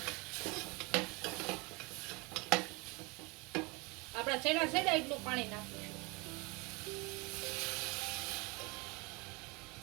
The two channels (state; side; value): quieter; left; 27.4 dB